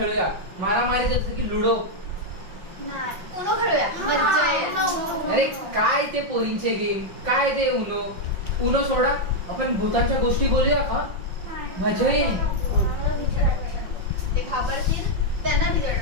मारामारी जसं की लुडो. नाही उनो खेळूया, मज्जा येईल. अरे काय ते पोरींचे गेम, काय ते उनो सोडा. आपण भूतांच्या गोष्टी बोलूया का? मजा येईल. ते घाबरतील, त्यांना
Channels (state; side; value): late; left; 5.7 ms